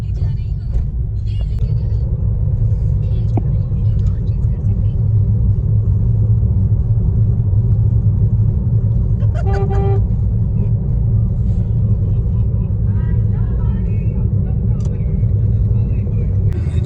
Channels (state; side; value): identical; both; correlation 1.00